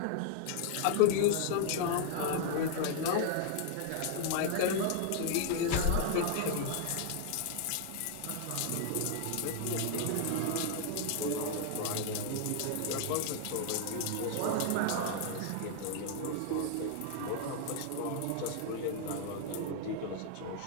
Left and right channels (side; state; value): both; different; correlation 0.00